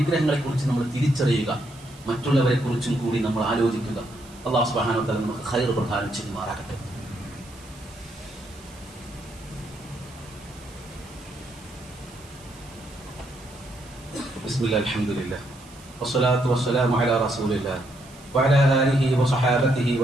കുറിച്ച് നമ്മൾ തിരിച്ചറിയുക. മറ്റുള്ളവരെ കുറിച്ചും കൂടി നമ്മൾ ആലോചിക്കുക. അല്ലാഹു സുബ്ഹാനഹു വ തആല നമുക്ക് ഖൈർ പ്രദാനം ചെയ്യുമാറാകട്ടെ. ബിസ്മില്ലാഹിൽ അൽഹംദുലില്ലാഹ് വസ്സലാത്തു വസ്സലാമു അലാ റസൂലില്ലാഹ് വഅലാ ആലിഹി വസഹാബതിഹി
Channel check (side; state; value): right; noise; hiss, 22 dB below the sound